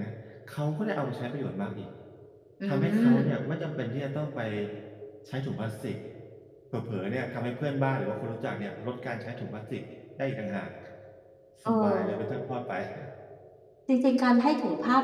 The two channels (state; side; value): identical; both; correlation 1.00